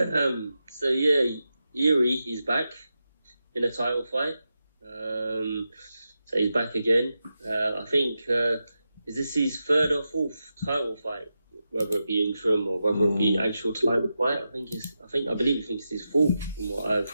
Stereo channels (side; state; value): both; inverted; correlation -0.89